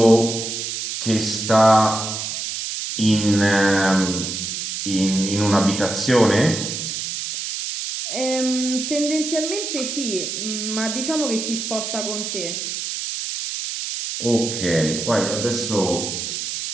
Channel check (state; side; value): noise; right; hiss, 4 dB below the sound